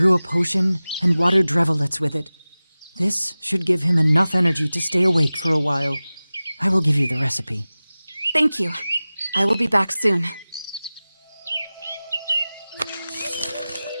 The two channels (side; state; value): both; inverted; correlation -0.98